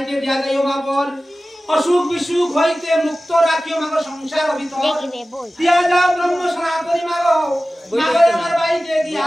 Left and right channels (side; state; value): both; normal; correlation 0.96